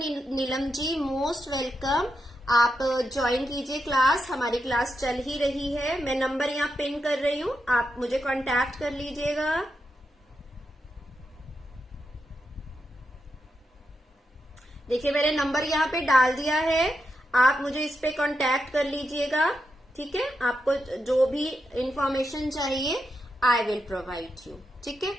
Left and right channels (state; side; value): normal; both; correlation 0.86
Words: ji, most welcome. आप ज्वाइन कीजिए क्लास, हमारी क्लास चल ही रही है। मैं नंबर यहाँ पिन कर रही हूँ, आप मुझे कांटेक्ट कर लीजिएगा। देखिए मैंने नंबर यहाँ पे डाल दिया है, आप मुझे इस पे कांटेक्ट कर लीजिएगा। ठीक है, आपको जो भी इंफॉर्मेशन चाहिए आई विल प्रोवाइड यू। ठीक है,